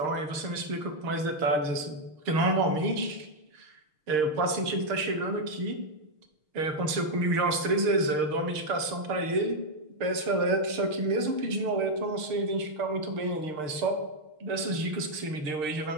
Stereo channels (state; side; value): late; left; 6.6 ms